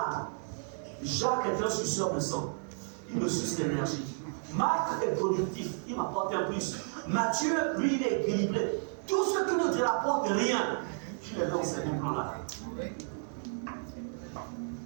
Jacques est un suceur de sang. Il me suce l'énergie. Marc est productif, il m'apporte un plus. Mathieu, lui, il est équilibré. Tout ce qui ne te rapporte rien, tu les mets au second plan là.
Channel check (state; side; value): silent; left; 56 dB below the other